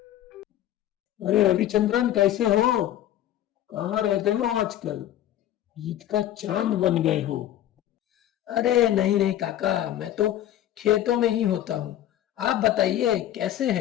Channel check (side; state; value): right; quieter; 12.3 dB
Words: अरे रविचंद्रन, कैसे हो? कहाँ रहते हो आजकल? ईद का चांद बन गए हो। अरे नहीं नहीं काका, मैं तो खेतों में ही होता हूँ। आप बताइए कैसे